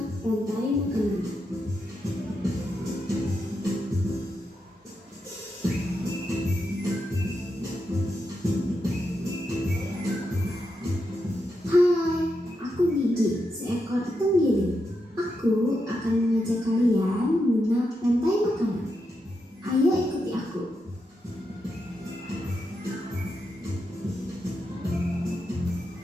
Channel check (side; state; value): both; normal; correlation 0.85